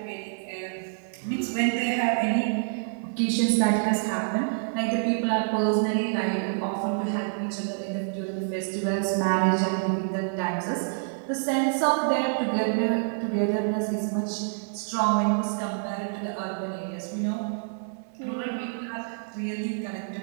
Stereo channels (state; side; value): silent; left; digital silence